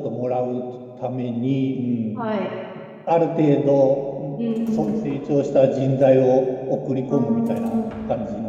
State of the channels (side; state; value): both; identical; correlation 1.00